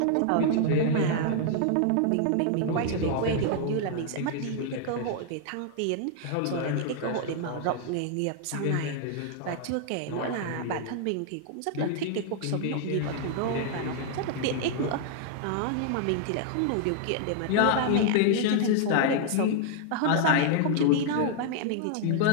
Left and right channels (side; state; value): both; different; correlation -0.01